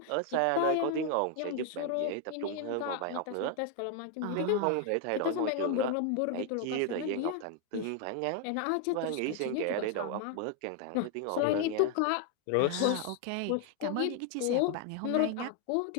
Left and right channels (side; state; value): both; different; correlation 0.00